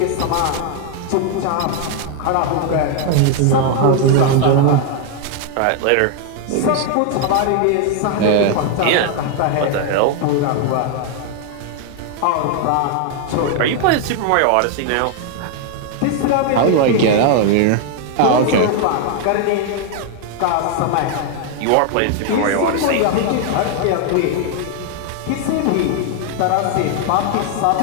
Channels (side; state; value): both; different; correlation 0.00